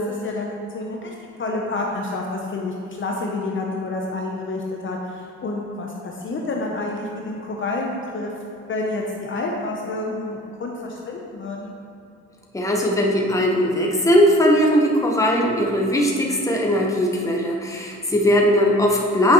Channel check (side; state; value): both; normal; correlation 0.46